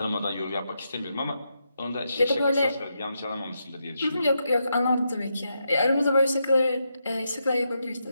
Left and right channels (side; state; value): both; inverted; correlation -0.83